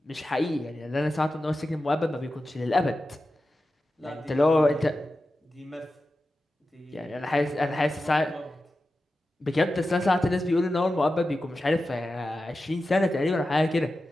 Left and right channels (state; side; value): normal; both; correlation 0.93